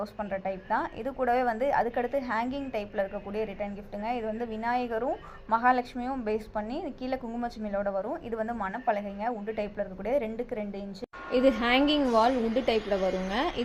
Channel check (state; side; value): identical; both; correlation 1.00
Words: பண்ணுற டைப் தான். இது கூடவே வந்து அதுக்கடுத்து ஹேங்கிங் டைப்பில் இருக்கக்கூடிய ரிட்டன் கிஃப்ட்டுங்க. இது வந்து விநாயகரும் மகாலட்சுமியும் பேஸ் பண்ணி கீழே குங்குமச்சிமிழோட வரும். இது வந்து மணப்பலகைங்க, உட்டு டைப்பில் இருக்கக்கூடிய 2x2 இன்ச்சு. இது ஹேங்கிங் வால் உட்டு டைப்பில் வருங்க.